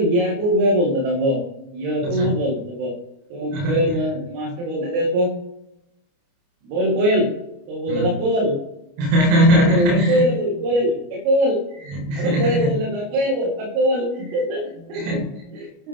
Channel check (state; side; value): late; left; 29 ms